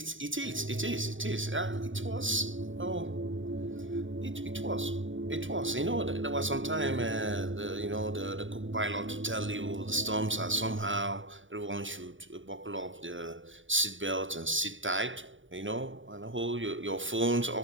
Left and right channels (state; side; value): late; left; 0.56 ms